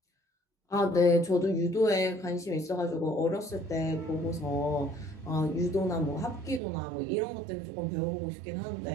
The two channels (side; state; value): left; drops out; at 6.6 s